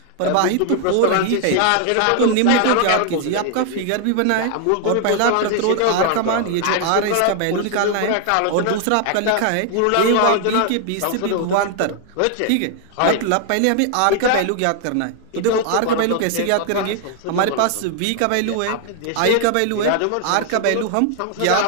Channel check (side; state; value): both; different; correlation 0.00